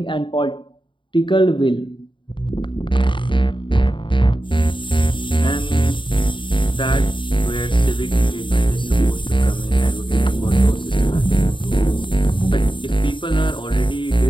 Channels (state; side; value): late; right; 0.24 ms